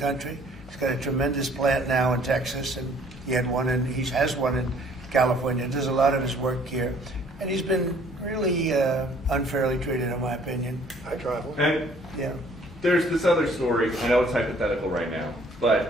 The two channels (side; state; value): both; normal; correlation 0.58